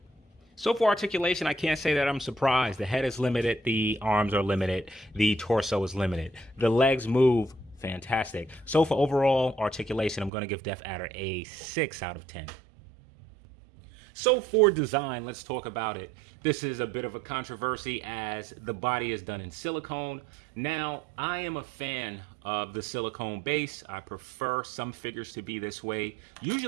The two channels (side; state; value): left; drops out; at 10.3 s